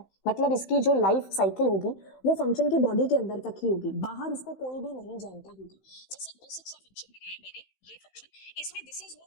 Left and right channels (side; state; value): right; late; 15 ms